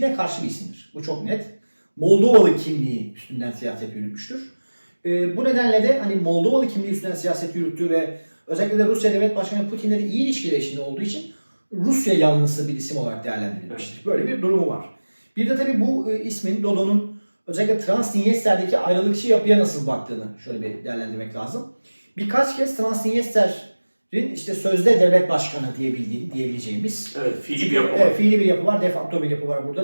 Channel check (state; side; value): inverted; both; correlation -1.00